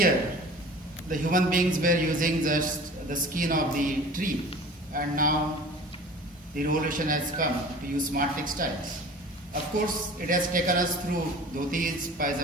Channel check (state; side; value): normal; both; correlation 0.42